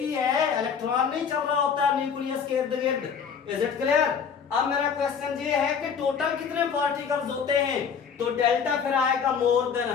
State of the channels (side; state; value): right; quieter; 6.8 dB